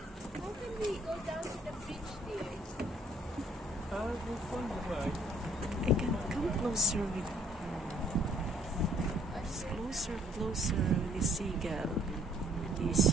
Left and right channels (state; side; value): normal; both; correlation 0.62